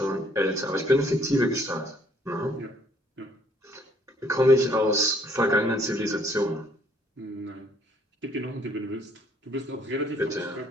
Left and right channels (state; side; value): normal; both; correlation 0.63